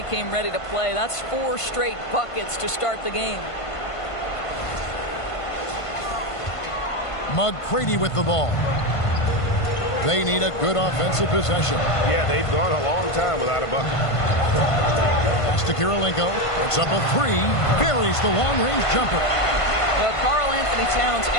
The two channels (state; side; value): late; right; 1.5 ms